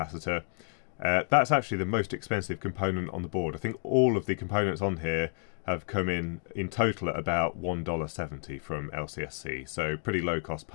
That's actually the most expensive component on the board. I think all of the components on here have come in total at about $1.70 from LCSC. So pretty low cost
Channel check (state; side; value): silent; right; 56 dB below the other